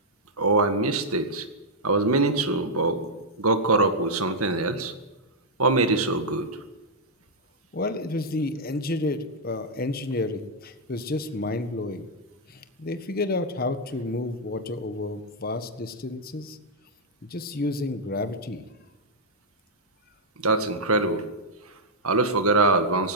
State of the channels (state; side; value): normal; both; correlation -0.05